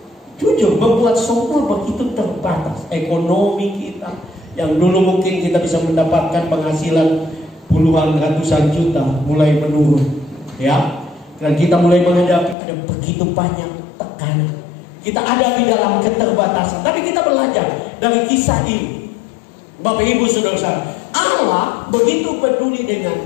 jujur membuat semua begitu terbatas. Ekonomi kita yang dulu mungkin kita bisa mendapatkan penghasilan puluhan ratusan juta mulai menurun. Ya, dan kita mulai menghadapi ada begitu banyak tekanan. Kita ada di dalam keterbatasan. Tapi kita belajar dari kisah ini, Bapak Ibu saudara, Allah begitu peduli dengan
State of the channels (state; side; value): drops out; right; at 12.6 s